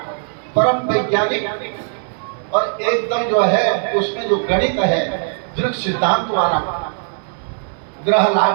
परम वैज्ञानिक और एकदम जो है उसमें जो गणित है दृढ़ सिद्धांत वाला, ग्रह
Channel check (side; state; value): left; silent; digital silence